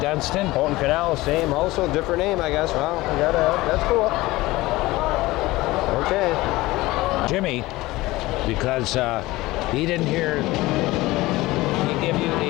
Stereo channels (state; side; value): quieter; right; 19.2 dB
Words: Dunstan. Houghton Canal, same, also different name, I guess. Well, we that's cool. Okay. Jimmy, because he didn't hear me give you